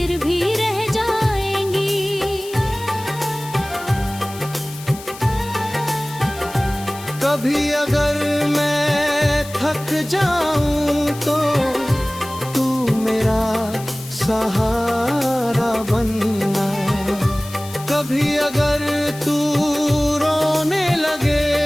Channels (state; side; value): noise; left; hiss, 16 dB below the sound